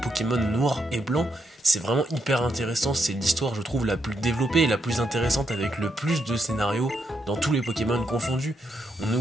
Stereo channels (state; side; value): normal; both; correlation 0.80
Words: noir et blanc. C'est vraiment hyper intéressant, c'est l'histoire je trouve la plus développée et la plus intéressante avec le plus de scénarios dans tous les Pokémon confondus. On